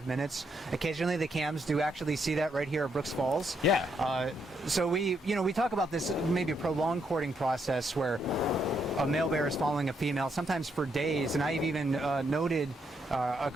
minutes. Occasionally, the cams do actually see that right here at Brooks Falls. Yeah. So we talk about this maybe a prolonged courting process where a male bear is following a female, sometimes for days. And I've even noted a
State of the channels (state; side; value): normal; both; correlation 0.77